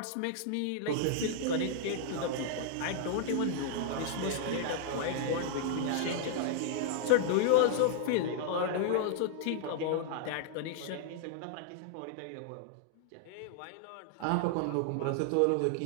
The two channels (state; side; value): different; both; correlation -0.01